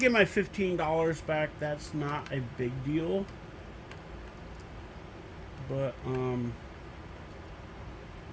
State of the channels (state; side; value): identical; both; correlation 1.00